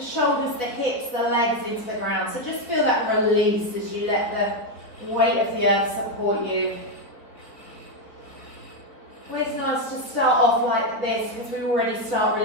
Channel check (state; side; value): late; right; 4.5 ms